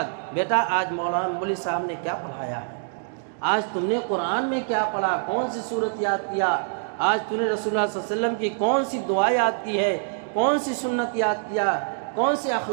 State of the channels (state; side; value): silent; left; digital silence